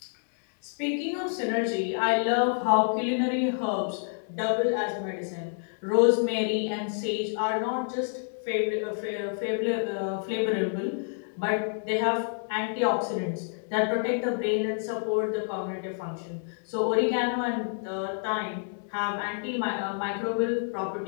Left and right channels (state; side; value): silent; right; digital silence